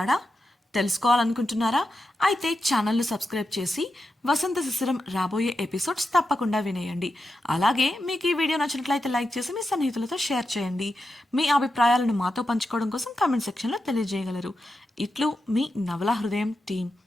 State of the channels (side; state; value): both; normal; correlation 0.88